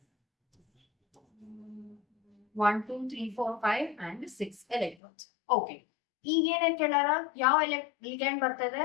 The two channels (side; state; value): right; drops out; at 5.0 s